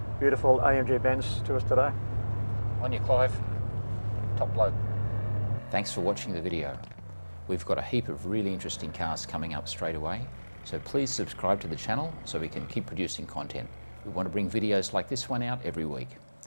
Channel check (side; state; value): both; inverted; correlation -1.00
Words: beautiful AMG Benz to us today. On you, Clive. Top bloke. Thanks for watching the video. We've got a heap of really interesting cars coming up straight away, so please subscribe to the channel so we can keep producing content. We want to bring videos like this one out every week.